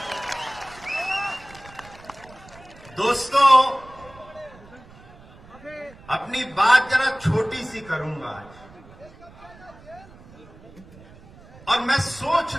दोस्तों, अपनी बात जरा छोटी सी करूंगा आज, और मैं सोच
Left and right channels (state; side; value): noise; right; rumble, 22 dB below the sound